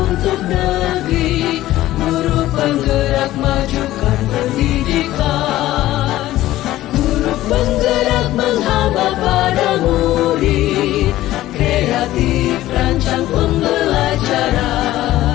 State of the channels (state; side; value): quieter; right; 15.2 dB